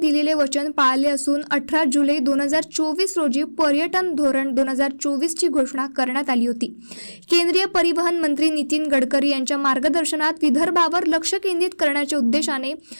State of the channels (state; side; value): inverted; both; correlation -1.00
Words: वचन पाळले असून 18 जुलै 2024 रोजी पर्यटन धोरण 2024 ची घोषणा करण्यात आली होती। केंद्रीय परिवहन मंत्री नितीन गडकरी यांच्या मार्गदर्शनात विदर्भावर लक्ष केंद्रित करण्याच्या उद्देशाने